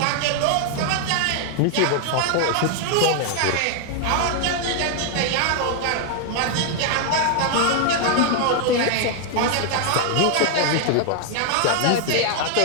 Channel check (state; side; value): different; both; correlation 0.00